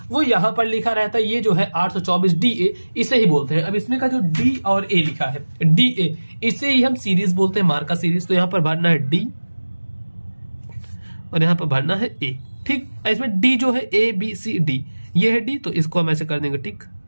वो यहां पर लिखा रहता है, ये जो है 824 DA इसे ही बोलते हैं। अब इसमें का जो डी और ए लिखा है, DA, इसे ही हम सीरीज बोलते हैं, मार्का सीरीज। तो यहां पर भरना है डी और यहां पर भरना है ए। ठीक, इसमें डी जो है ABCD, ये है डी, तो इसको हम ऐसे कर देंगे टिक।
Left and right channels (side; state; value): both; inverted; correlation -1.00